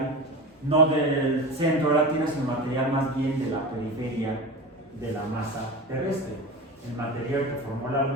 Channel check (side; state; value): both; normal; correlation 0.28